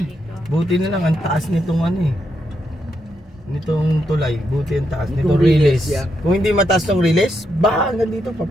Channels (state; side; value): normal; both; correlation 0.81